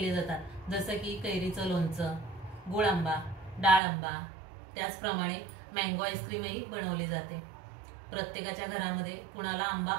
जातात, जसं की कैरीचं लोणचं, गुळ आंबा, डाळ आंबा, त्याचप्रमाणे मँगो आईस्क्रीमही बनवली जाते। प्रत्येकाच्या घरामध्ये कुणाला आंबा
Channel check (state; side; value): drops out; left; at 3.8 s